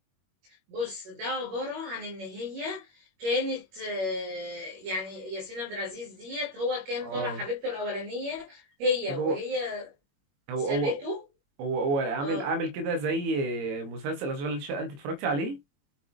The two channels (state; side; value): late; left; 21 ms